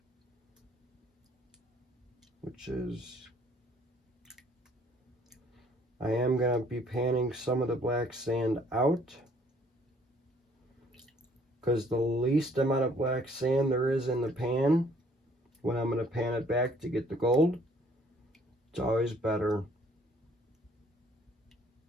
which is, I am going to be panning some of the black sand out, because the least amount of black sand there is in the pan, when I'm going to pan it back to get the gold, it's always better.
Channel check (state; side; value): normal; both; correlation 0.61